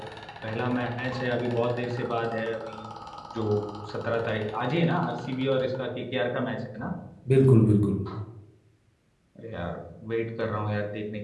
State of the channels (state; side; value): identical; both; correlation 1.00